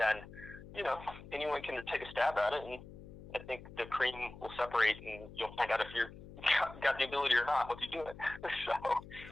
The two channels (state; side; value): noise; left; hum, 16 dB below the sound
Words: anyone can take a stab at it, and I think the cream will separate, and you'll find out if you're got the ability or not once you do it.